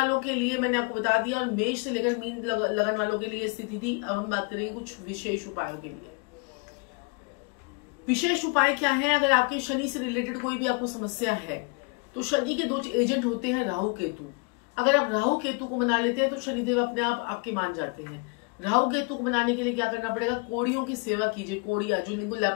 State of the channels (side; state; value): right; quieter; 31.6 dB